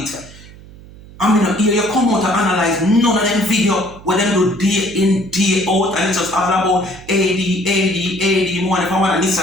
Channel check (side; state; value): right; noise; hum, 20 dB below the sound